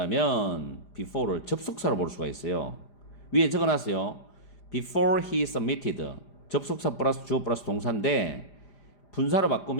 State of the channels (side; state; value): right; late; 5.0 ms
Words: before를 접속사로 볼 수가 있어요. 위에 적어놨어요. before he submitted 접속사 플러스 주어 플러스 동사인데 분사로